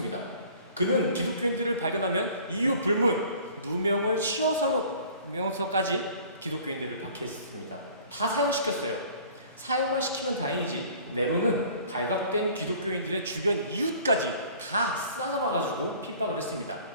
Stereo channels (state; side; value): inverted; both; correlation -0.50